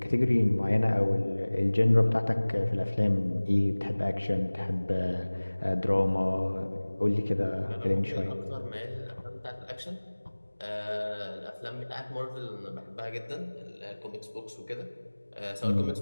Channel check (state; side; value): inverted; both; correlation -1.00